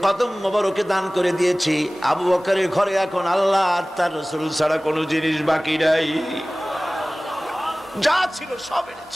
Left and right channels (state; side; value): normal; both; correlation 0.98